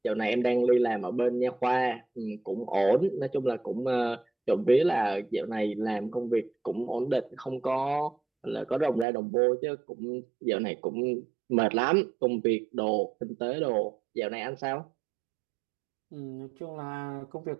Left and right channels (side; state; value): left; drops out; at 9.1 s